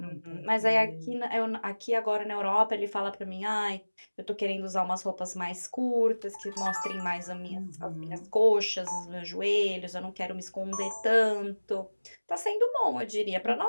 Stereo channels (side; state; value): both; inverted; correlation -1.00